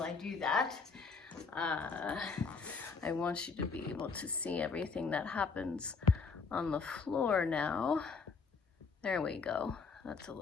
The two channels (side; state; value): right; quieter; 5.0 dB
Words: I do that. I want you to be able to see everything that happens on the floor now. There we go. That's a